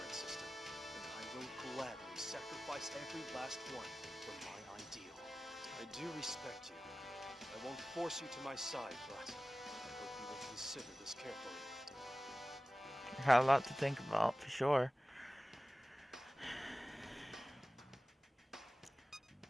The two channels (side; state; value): both; normal; correlation 0.96